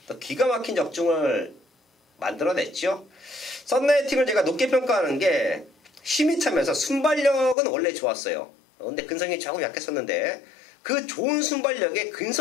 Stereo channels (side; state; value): right; drops out; at 7.6 s